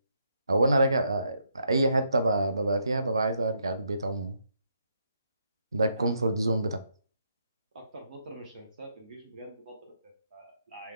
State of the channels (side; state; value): both; inverted; correlation -0.76